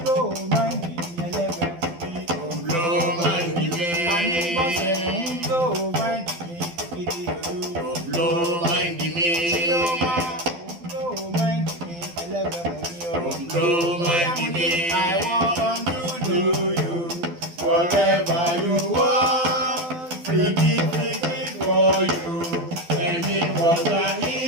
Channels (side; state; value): left; late; 12 ms